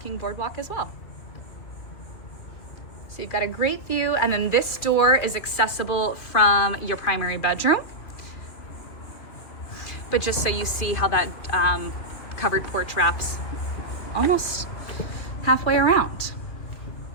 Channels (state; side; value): late; right; 2.5 ms